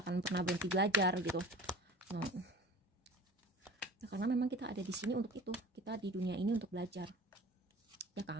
akan pernah berhenti belajar gitu. Nah, karena memang kita ada di sini untuk itu, kita di dunia ini untuk belajar, ya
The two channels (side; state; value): both; normal; correlation 0.41